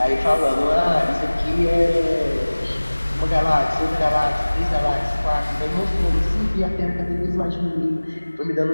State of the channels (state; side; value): inverted; both; correlation -1.00